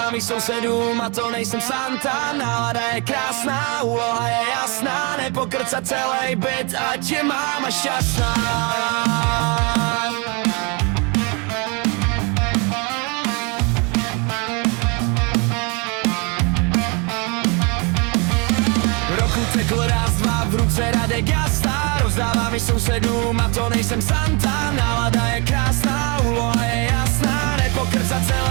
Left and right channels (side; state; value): left; quieter; 31.7 dB